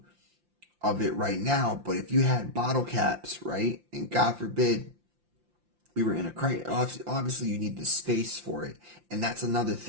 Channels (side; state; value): left; late; 5.8 ms